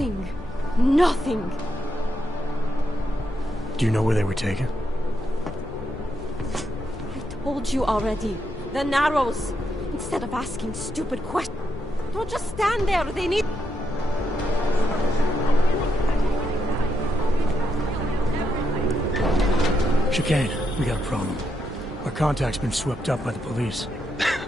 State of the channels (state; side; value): normal; both; correlation 0.81